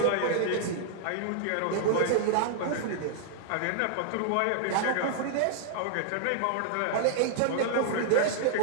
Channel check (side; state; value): both; different; correlation -0.01